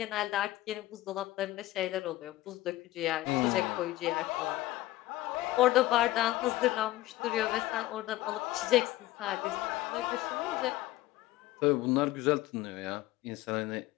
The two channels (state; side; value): quieter; right; 16.6 dB